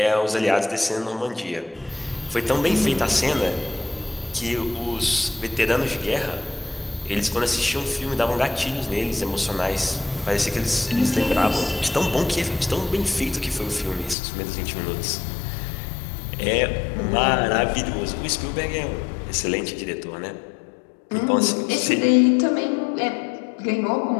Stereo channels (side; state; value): right; drops out; at 14.2 s